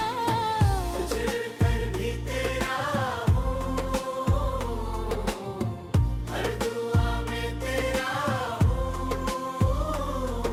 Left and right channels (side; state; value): both; identical; correlation 1.00